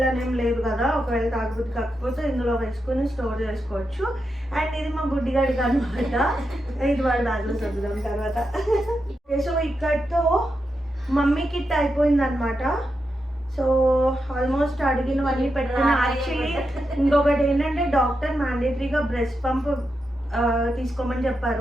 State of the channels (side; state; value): both; normal; correlation 0.87